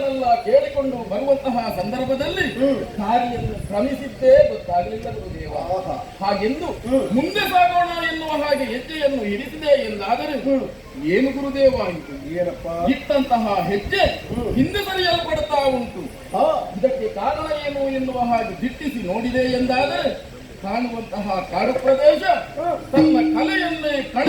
ಕೇಳಿಕೊಂಡು ಬರುವಂತಹ ಸಂದರ್ಭದಲ್ಲಿ ದಾರಿಯನ್ನು ಕ್ರಮಿಸಿದ್ದೇ ಗೊತ್ತಾಗಲಿಲ್ಲ ಗುರುದೇವ. ಹಾಗೆಂದು ಮುಂದೆ ಸಾಗೋಣ ಎನ್ನುವ ಹಾಗೆ ಹೆಜ್ಜೆಯನ್ನು ಇರಿಸಿದೆ ಎಂದಾದರೆ ಏನು ಗುರುದೇವ ಇದು? ಏನಪ್ಪ ಇಟ್ಟಂತಹ ಹೆಜ್ಜೆ ಹಿಂದೆ ಸರಿಯಲ್ಪಡುತ್ತಾ ಉಂಟು. ಇದಕ್ಕೆ ಕಾರಣ ಏನು ಎನ್ನುವ ಹಾಗೆ ದಿಟ್ಟಿಸಿ ನೋಡಿದೆ ಎಂದಾದರೆ ಕಾಣುವಂತಹ ಕಾಡು ಪ್ರದೇಶ ತನ್ನ ಕಲೆಯನ್ನೇ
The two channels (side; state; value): both; identical; correlation 1.00